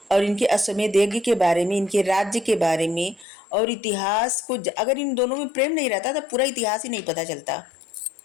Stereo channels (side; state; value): right; drops out; at 3.2 s